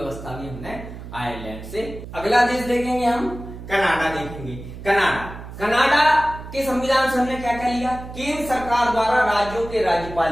भी हमने आयरलैंड से। अगला देश देखेंगे हम, कनाडा देखेंगे। कनाडा के संविधान से हमने क्या क्या लिया, केंद्र सरकार द्वारा राज्यों के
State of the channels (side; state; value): right; noise; hum, 12 dB below the sound